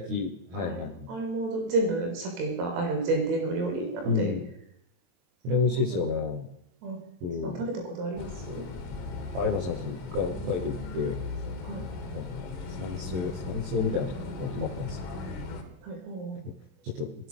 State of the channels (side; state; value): left; late; 22 ms